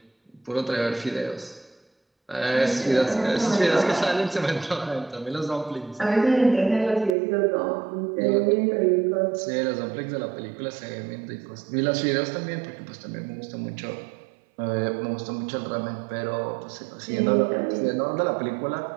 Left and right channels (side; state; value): left; drops out; at 7.2 s